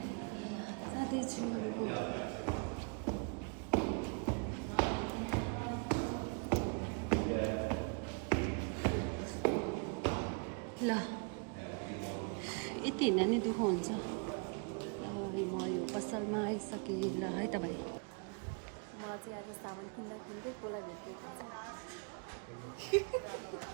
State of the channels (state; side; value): quieter; left; 37.2 dB